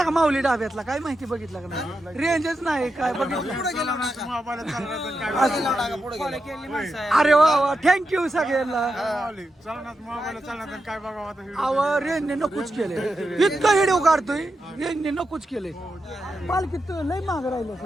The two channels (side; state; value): both; normal; correlation 0.88